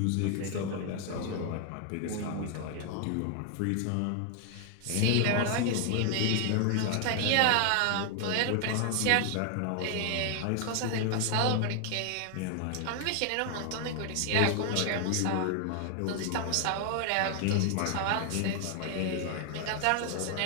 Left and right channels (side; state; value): both; different; correlation 0.00